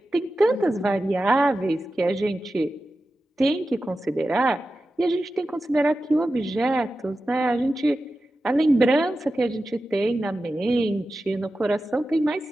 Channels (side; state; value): both; normal; correlation 0.93